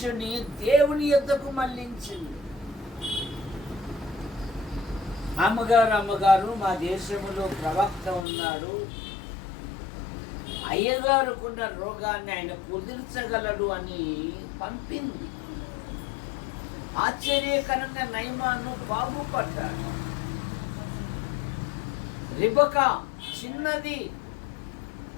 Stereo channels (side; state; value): right; drops out; at 8.2 s